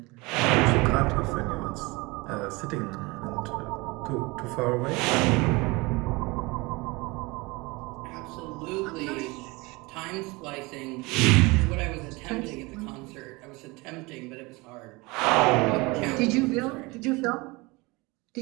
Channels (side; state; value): left; quieter; 24.4 dB